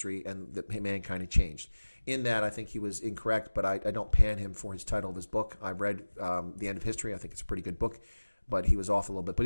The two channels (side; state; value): both; inverted; correlation -1.00